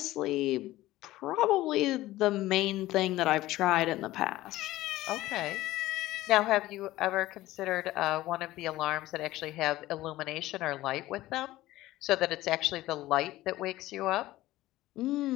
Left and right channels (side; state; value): right; quieter; 16.5 dB